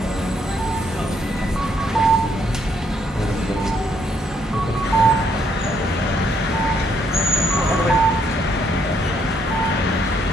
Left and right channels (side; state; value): both; normal; correlation 0.71